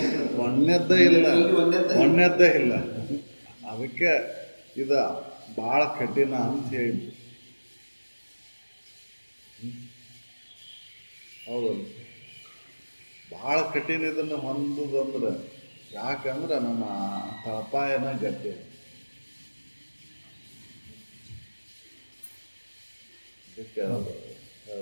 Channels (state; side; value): inverted; both; correlation -1.00